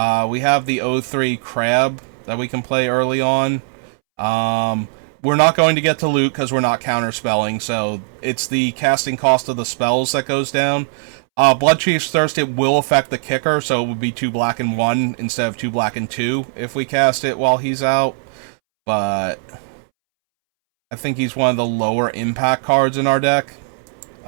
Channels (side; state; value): left; silent; 66 dB below the other